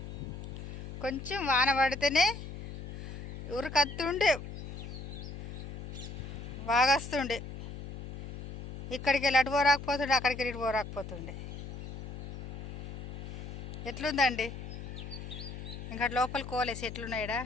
కొంచెం వాన పడితేనే ఉరికత్తుండే వాగస్తుండే. ఇక్కడికి వెళ్ళి అటు పోరాకపోతుండే, అక్కడికి వెళ్ళి ఇటు పోరాకపోతుండే. ఎట్లుందండి ఇంకా లోపలికి పోలేసి ఎట్లున్నాయిడా.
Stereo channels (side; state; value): left; noise; hum, 9 dB below the sound